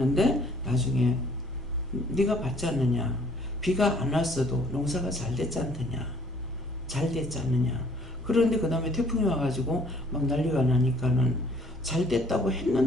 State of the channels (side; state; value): both; normal; correlation 0.59